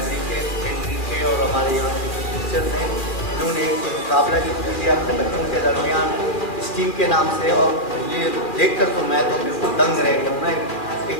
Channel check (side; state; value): right; late; 2.4 ms